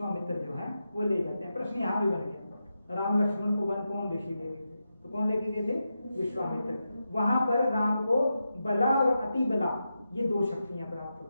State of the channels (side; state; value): both; inverted; correlation -0.88